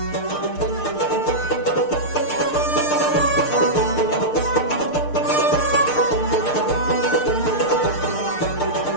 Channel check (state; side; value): late; right; 6.6 ms